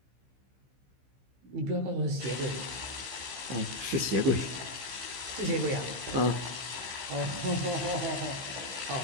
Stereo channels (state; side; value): late; left; 15 ms